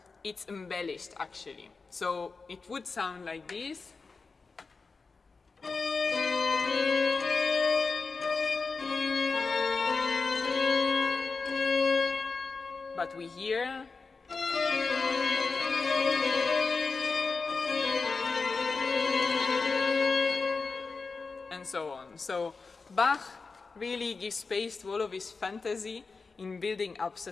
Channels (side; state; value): right; quieter; 4.4 dB